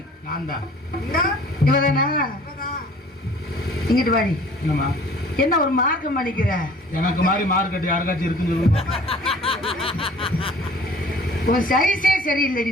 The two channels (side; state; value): both; normal; correlation 0.50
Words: இவதானா? இங்கிட்டு வாடி. என்ன ஒரு மார்க்கம் பண்ணிக்கிற? எனக்கு மாதிரி மார்க்கெட் யாருக்காச்சும் இருக்குன்னு சொல்லுங்க. உன் சைஸே சரியில்லடி.